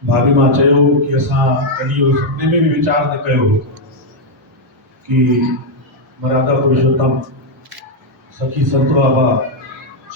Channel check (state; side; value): normal; both; correlation 0.00